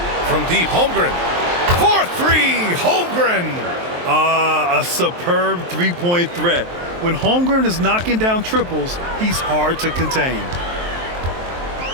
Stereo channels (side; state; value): left; late; 23 ms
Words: from deep. Holmgren. 4-3. Holmgren. A superb three-point threat. When Holmgren is knocking down triples, he's hard to contain.